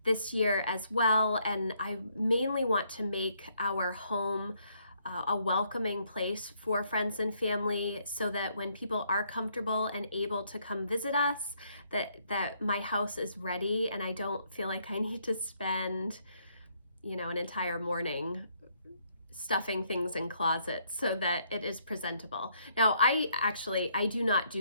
this year as well. And I mainly want to make our home a welcoming place for friends and family, so that when people are comfortable and able to come visit us, that my house is ready and I don't feel like I need to spend, an entire morning stuffing things in closets so that it is presentable. Now, I do not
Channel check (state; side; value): inverted; both; correlation -0.70